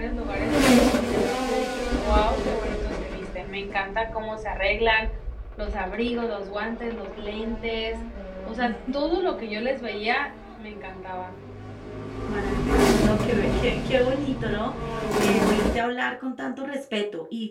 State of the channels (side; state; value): both; identical; correlation 1.00